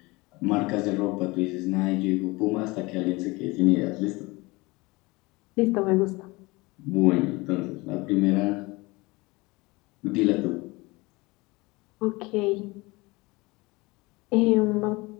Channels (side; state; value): right; quieter; 23.6 dB